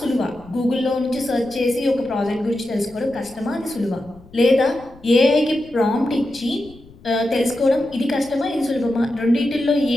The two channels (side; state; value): left; noise; rumble, 23 dB below the sound